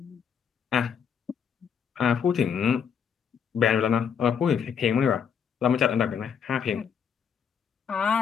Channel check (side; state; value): right; quieter; 7.3 dB